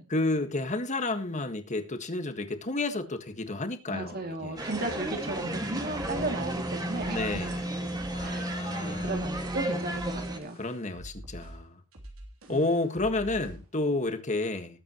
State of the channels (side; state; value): both; normal; correlation 0.43